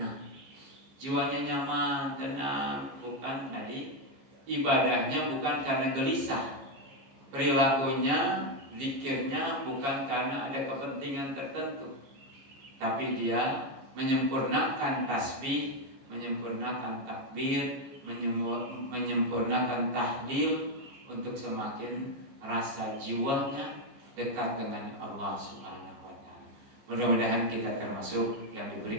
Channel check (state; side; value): late; left; 15 ms